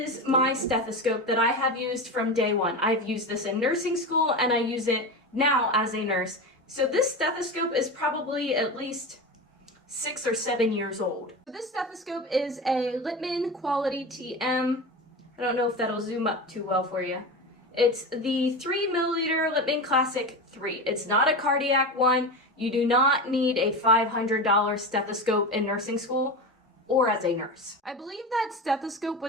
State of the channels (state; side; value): normal; both; correlation 0.23